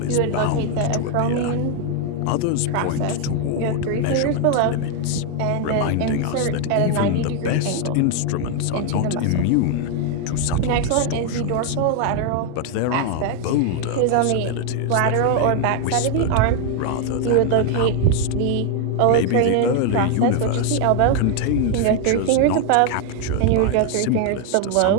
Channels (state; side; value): different; both; correlation 0.01